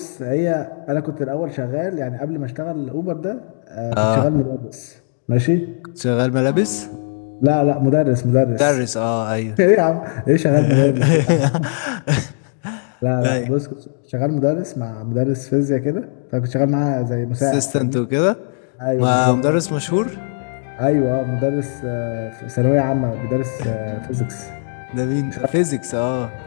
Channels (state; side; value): silent; right; 65 dB below the other